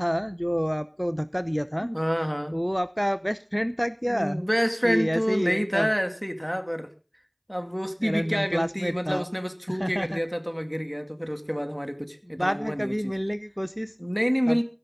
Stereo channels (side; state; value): both; identical; correlation 1.00